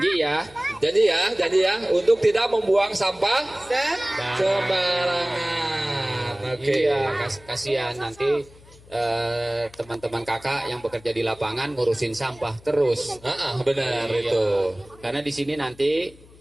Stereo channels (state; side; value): noise; left; hum, 24 dB below the sound